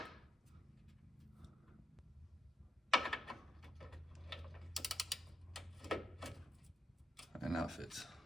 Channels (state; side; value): normal; both; correlation 0.82